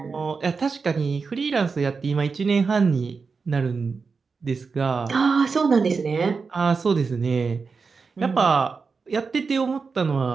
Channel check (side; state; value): left; quieter; 4.9 dB